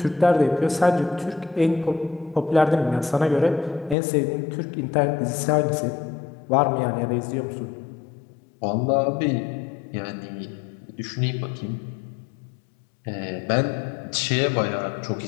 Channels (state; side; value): drops out; right; at 4.0 s